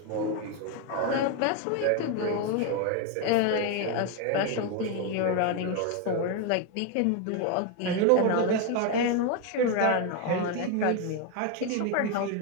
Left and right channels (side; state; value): both; different; correlation 0.02